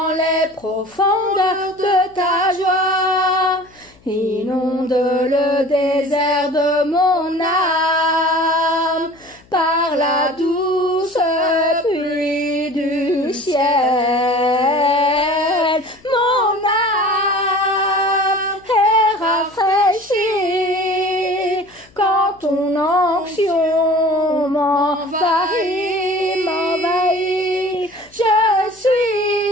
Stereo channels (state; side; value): noise; left; hum, 29 dB below the sound